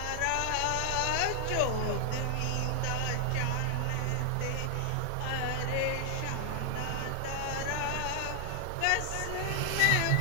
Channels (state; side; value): different; both; correlation 0.00